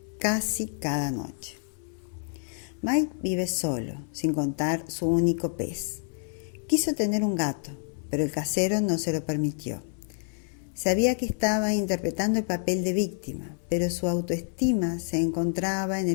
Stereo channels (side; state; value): right; silent; 56 dB below the other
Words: casi cada noche. Mike vive solo, sin contar su único pez. Quiso tener un gato, pero el casero no se lo permitió. Sabía que estaba interpretando el papel de víctima, pero su autoestima se encontraba en